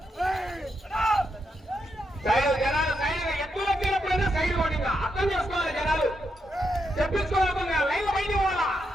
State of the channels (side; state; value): both; normal; correlation 0.82